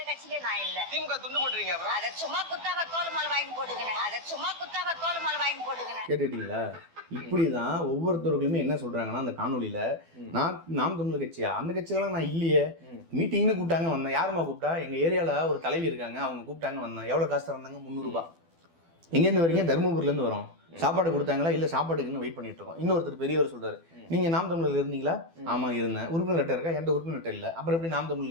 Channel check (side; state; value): left; late; 12 ms